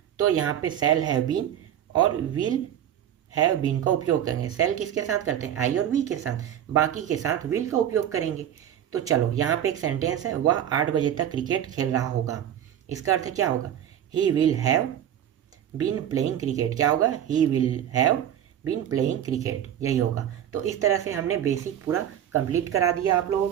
तो यहाँ पे शैल हैव बीन और विल हैव बीन का उपयोग करेंगे। शैल किसके साथ करते हैं, आई और वी के साथ, बाकी के साथ विल का उपयोग करेंगे। तो चलो यहाँ पे एक सेंटेंस है, वह 8 बजे तक क्रिकेट खेल रहा होगा। इसका अर्थ क्या होगा, he will have been playing cricket. क्या होगा, he will have been playing cricket, यही होगा। तो इस तरह से हमने बेसिक पूरा कंप्लीट करा दिया आप लोगों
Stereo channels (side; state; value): left; quieter; 10.4 dB